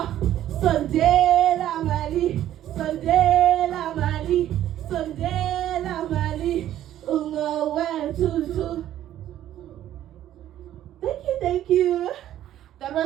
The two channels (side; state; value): left; quieter; 12.2 dB